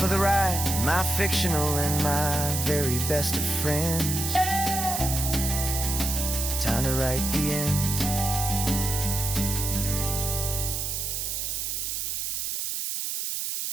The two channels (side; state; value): right; noise; hiss, 2 dB below the sound